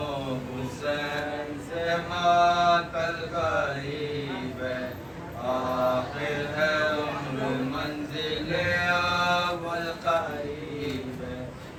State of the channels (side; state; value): both; identical; correlation 1.00